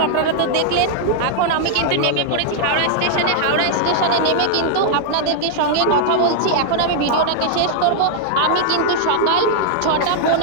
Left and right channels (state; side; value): different; both; correlation -0.01